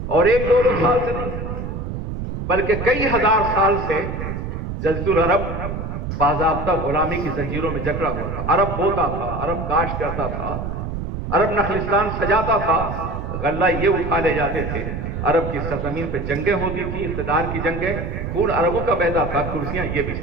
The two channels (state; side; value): noise; right; rumble, 5 dB below the sound